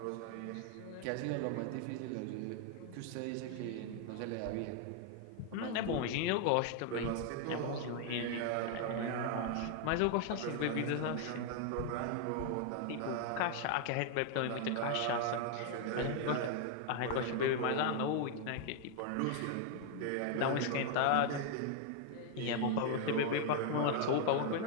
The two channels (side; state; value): both; different; correlation 0.00